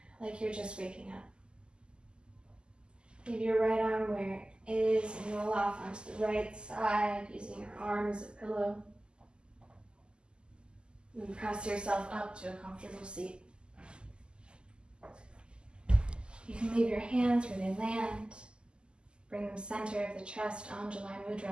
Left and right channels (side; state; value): left; late; 0.049 ms